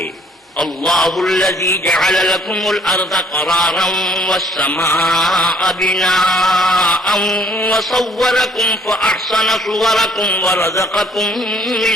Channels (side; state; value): both; normal; correlation 0.61